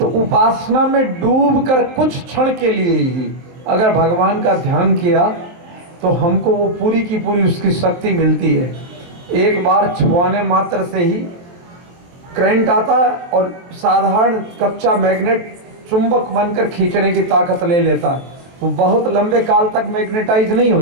उपासना में डूबकर कुछ क्षण के लिए ही अगर भगवान का ध्यान किया तो हमको वो पूरी की पूरी उसकी शक्ति मिलती है। एक बार छुआने मात्र से ही करंट आता है और साधारण कच्चा मैग्नेट चुंबक बनकर खींचने की ताकत ले लेता है। वो बहुत लंबे काल तक मैग्नेटाइज नहीं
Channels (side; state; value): left; late; 23 ms